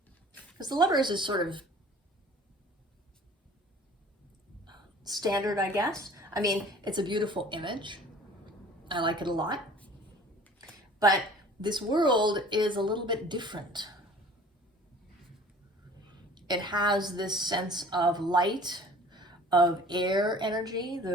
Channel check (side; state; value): both; normal; correlation 0.48